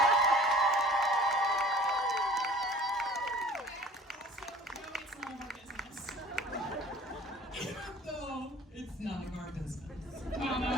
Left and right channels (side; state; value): both; normal; correlation 0.48